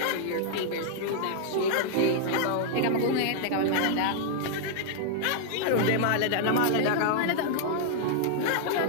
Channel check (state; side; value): different; both; correlation 0.00